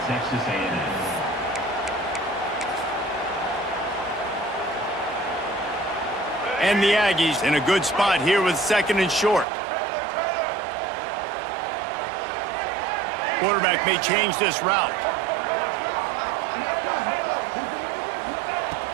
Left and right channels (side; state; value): left; drops out; at 9.5 s